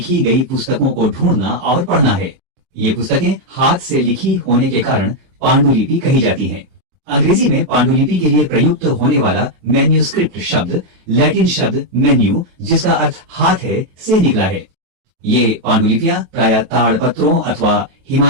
गई पुस्तकों को ढूंढना और पढ़ना है। ये पुस्तकें हाथ से लिखी होने के कारण पांडुलिपि कही जाती हैं। अंग्रेजी में पांडुलिपि के लिए प्रयुक्त होने वाला मैन्यूस्क्रिप्ट शब्द लैटिन शब्द मेन्यू, जिसका अर्थ हाथ है, से निकला है। ये पांडुलिपियां प्रायः ताड़ पत्रों अथवा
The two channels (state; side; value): late; left; 23 ms